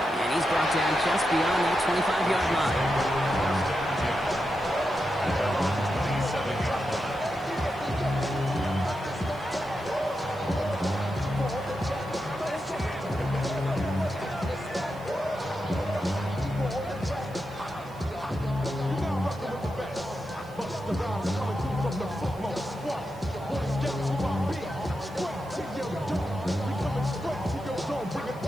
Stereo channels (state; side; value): noise; right; hiss, 26 dB below the sound